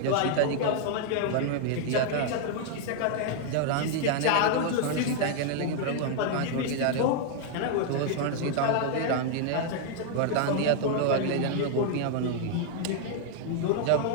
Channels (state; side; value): different; both; correlation 0.00